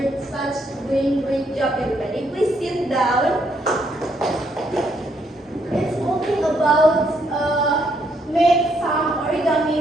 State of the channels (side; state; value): both; normal; correlation 0.73